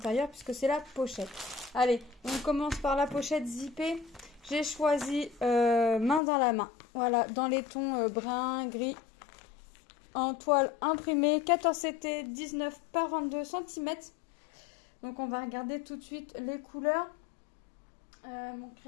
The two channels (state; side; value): drops out; right; at 6.2 s